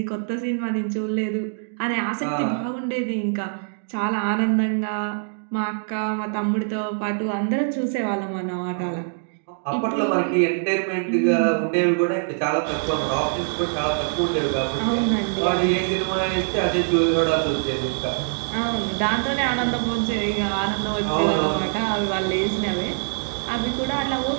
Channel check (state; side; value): silent; left; digital silence